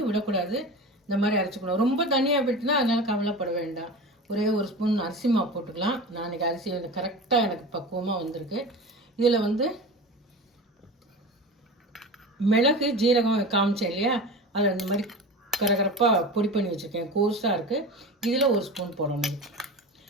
விடக்கூடாது. இந்த மாதிரி அரைச்சிக்கணும். ரொம்ப தனியாக போயிட்டுனா அதனால் கவலைப்பட வேண்டாம். ஒரே ஒரு ஸ்பூன் அரிசி மாவு போட்டுக்கலாம். நான் இன்றைக்கி அரிசி கரெக்டாக எனக்கு பக்குவமாக வந்திருக்கு. இதில் மிளகு, ஜீரகம் காமிச்சேன் இல்லையா, அதை இந்த மாதிரி கரகரப்பாக பொடி பண்ணி வச்சுருக்கேன். கோர்ஸாக இருக்குது. இதில் ஒரு ஸ்பூன் போடணும்.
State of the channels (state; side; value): normal; both; correlation 0.31